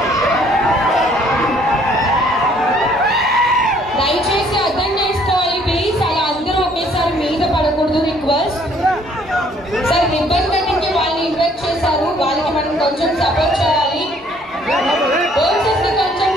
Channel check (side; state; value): both; normal; correlation 0.62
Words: దయచేసి అర్థం చేసుకోవాలి ప్లీజ్. అలా అందరూ ఒకేసారి మీద పడకూడదు. Request sir. రిబ్బన్ కటింగ్ కి వాళ్ళని ఇన్వైట్ చేశారు, వాళ్ళకి మనం కొంచెం సపోర్ట్ చేయాలి. పోలీసెస్ ని కొంచెం